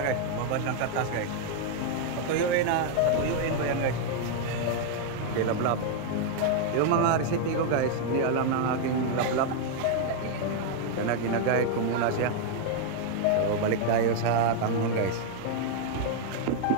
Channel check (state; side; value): different; both; correlation 0.00